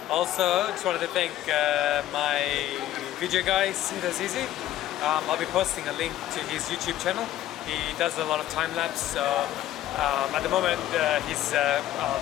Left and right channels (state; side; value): quieter; right; 13.4 dB